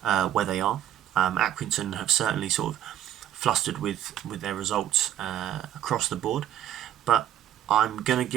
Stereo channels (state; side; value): quieter; left; 11.5 dB